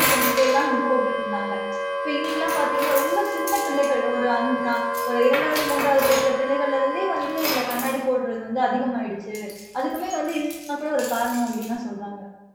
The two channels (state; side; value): identical; both; correlation 1.00